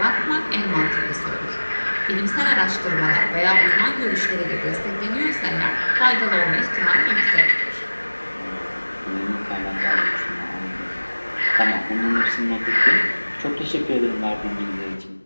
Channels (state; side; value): inverted; both; correlation -1.00